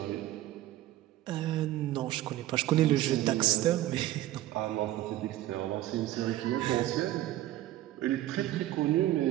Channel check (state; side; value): quieter; left; 14.6 dB